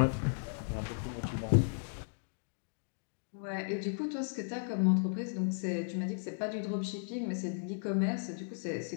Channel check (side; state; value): right; silent; digital silence